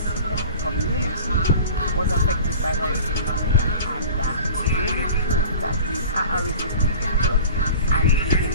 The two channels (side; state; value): both; inverted; correlation -0.39